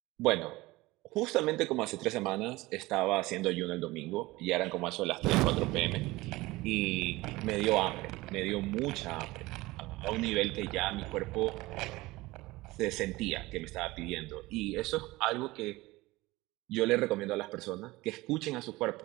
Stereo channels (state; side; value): quieter; left; 20.1 dB